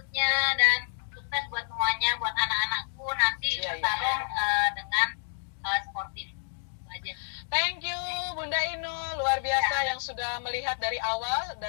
dan sukses buat semuanya, buat anak-anakku nanti bertarung dengan sportif. Aja. Thank you Bunda Inul, luar biasa yang sudah melihat dari awal,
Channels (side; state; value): right; silent; digital silence